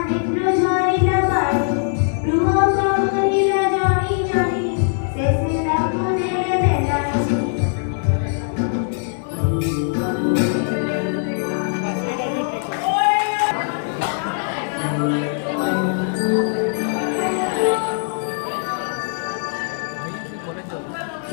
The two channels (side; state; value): right; silent; digital silence